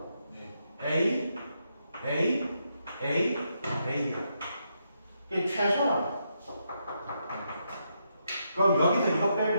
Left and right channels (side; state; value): both; inverted; correlation -0.81